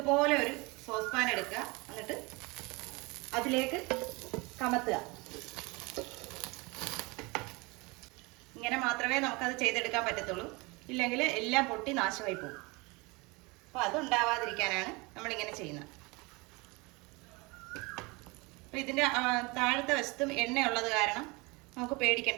ഒരു സോസ് പാൻ എടുക്കുക, എന്നിട്ട് അതിലേക്ക് കമത്തുക. ഇങ്ങനെ മാത്രമേ നമുക്കത് ചെയ്തെടുക്കാൻ പറ്റത്തുള്ളൂ, ഇല്ലെങ്കിൽ എല്ലാം പൊട്ടി നാശമായി പോകും. അപ്പോൾ അതുണ്ടാവാതിരിക്കാനാണ് നമ്മളിങ്ങനെ ചെയ്യുന്നത്. അപ്പോൾ ഇതിൻ്റെ താഴത്തെ വശത്തും എണ്ണയുള്ളത് കാരണം നമുക്ക്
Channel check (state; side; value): quieter; left; 26.0 dB